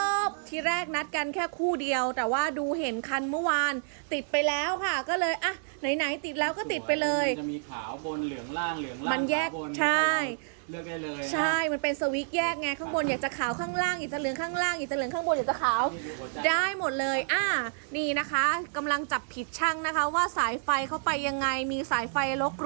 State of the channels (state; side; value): silent; left; digital silence